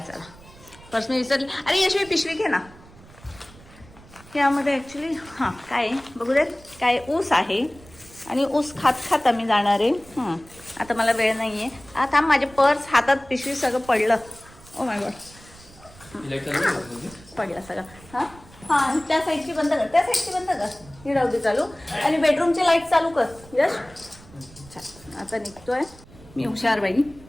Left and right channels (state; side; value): noise; right; rumble, 22 dB below the sound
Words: पर्स मी विसरली. अरे यशवी पिशवी घे ना. यामध्ये ऍक्च्युली हां काय बघू देत. काय ऊस आहे आणि ऊस खात खात आम्ही जाणार आहे. आता मला वेळ नाहीये. आता माझे पर्स हातात पिशवी सगळं पडलं. ओ माय गॉड, पडलं सगळं. हां हां, त्या साईडची बंद कर, त्या साईडची बंद कर. ही राहू दे चालू. आणि बेडरूमची लाईट चालू कर. यश आता निघतोय मी. हुशार बाई.